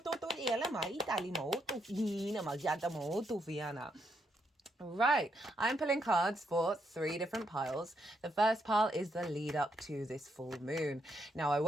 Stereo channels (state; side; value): normal; both; correlation 0.77